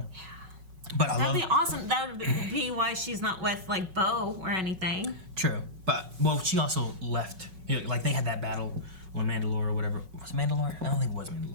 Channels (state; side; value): late; left; 5.4 ms